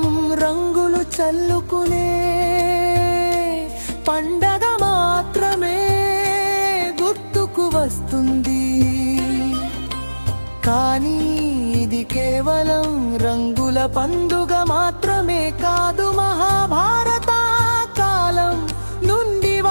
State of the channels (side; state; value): both; inverted; correlation -1.00